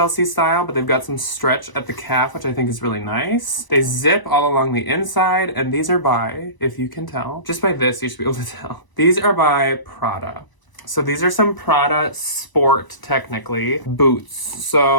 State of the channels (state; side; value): late; right; 1.0 ms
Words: style, but they've got some stretch at the calf, which I think is really nice. They zip all along the inside, and these are by, if you can tell, just by this, you should be able to tell. These are by Prada. So these are some Prada Sport, technically, boots.